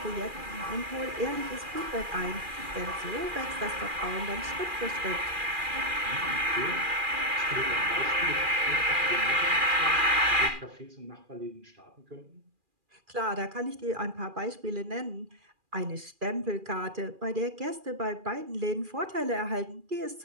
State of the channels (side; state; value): left; late; 2.4 ms